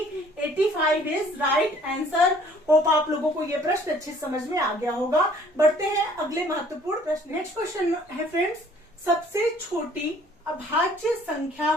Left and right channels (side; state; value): both; normal; correlation 0.57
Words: 85 is right answer. Hope आप लोगों को ये प्रश्न अच्छे समझ में आ गया होगा। बढ़ते हैं अगले महत्वपूर्ण प्रश्न। नेक्स्ट क्वेश्चन है फ्रेंड्स, सबसे छोटी अभाज्य संख्या